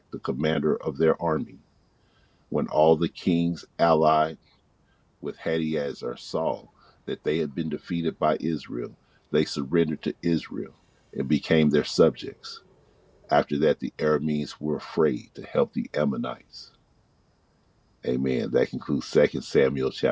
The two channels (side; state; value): both; identical; correlation 1.00